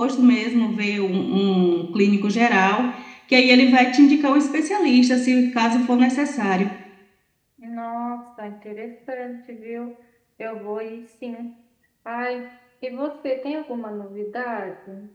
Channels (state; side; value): identical; both; correlation 1.00